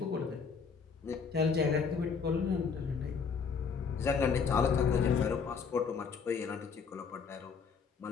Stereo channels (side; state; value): right; quieter; 5.8 dB